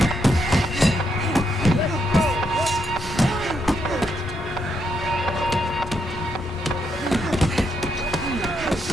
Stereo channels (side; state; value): both; normal; correlation 0.78